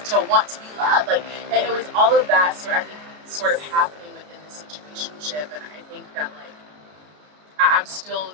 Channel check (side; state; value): left; late; 33 ms